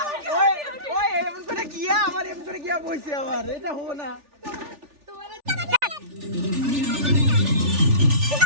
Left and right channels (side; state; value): left; late; 3.4 ms